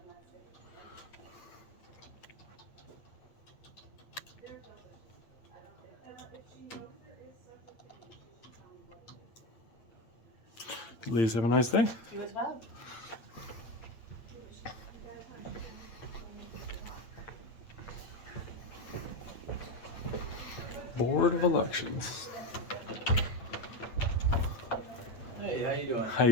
Ladies, have a nice day. You as well. Board of Elections. Hey, how you doing? How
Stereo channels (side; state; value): right; late; 8.5 ms